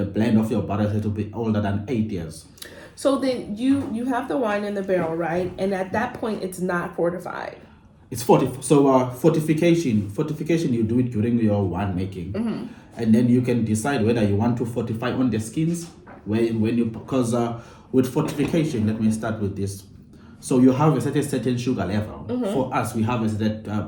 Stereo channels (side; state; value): both; identical; correlation 1.00